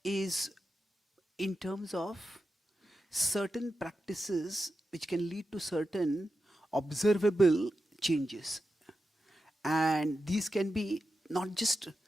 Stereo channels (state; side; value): normal; both; correlation 0.90